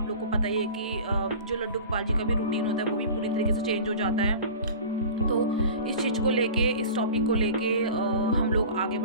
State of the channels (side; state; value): both; inverted; correlation -0.37